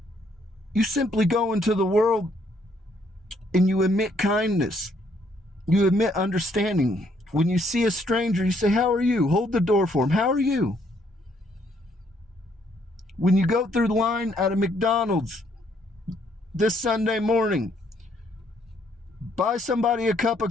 You simply go into the world and you emit kindness. You emit understanding. When you see a stranger, you say, "How are you?" Hold the door for him. "How are you?" When you go through the line at a McDonald's this Sunday morning, buy somebody a cup of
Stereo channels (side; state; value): both; normal; correlation 0.69